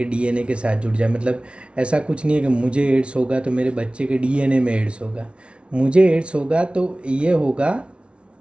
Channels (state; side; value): late; left; 0.059 ms